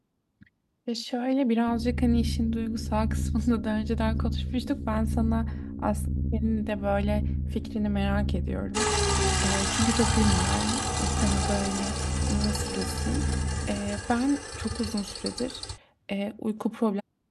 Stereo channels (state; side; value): identical; both; correlation 1.00